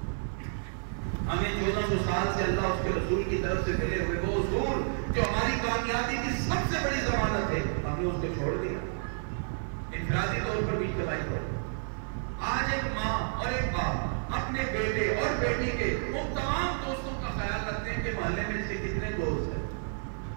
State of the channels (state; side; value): silent; left; 56 dB below the other